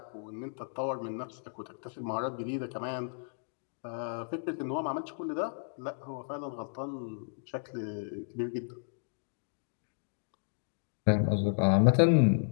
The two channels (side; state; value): right; silent; digital silence